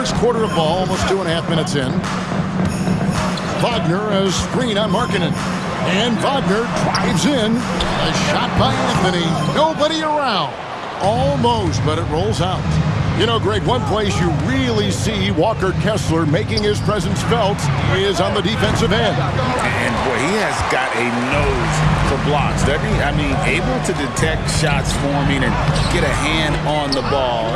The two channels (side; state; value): both; identical; correlation 1.00